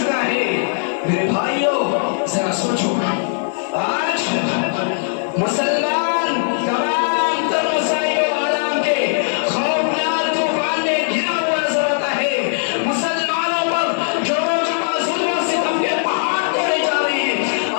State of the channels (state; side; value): silent; right; digital silence